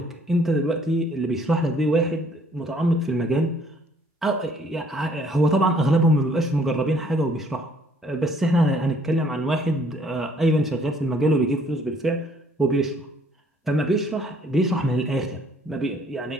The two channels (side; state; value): both; normal; correlation 0.62